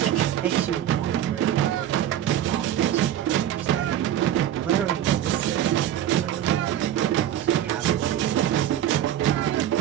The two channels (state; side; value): quieter; left; 11.4 dB